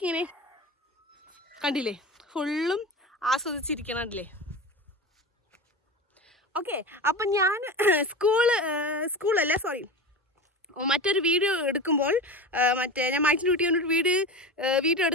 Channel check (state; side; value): normal; both; correlation 0.27